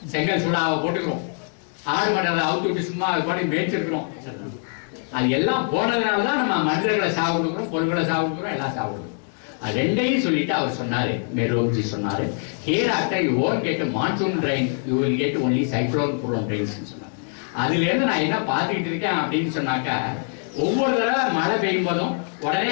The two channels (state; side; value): silent; right; 56 dB below the other